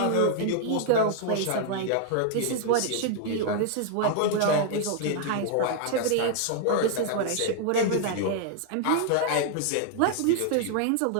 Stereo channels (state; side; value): different; both; correlation 0.00